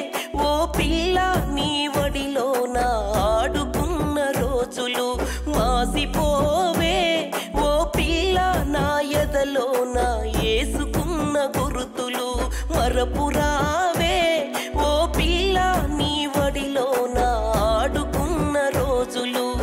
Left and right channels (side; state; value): both; identical; correlation 1.00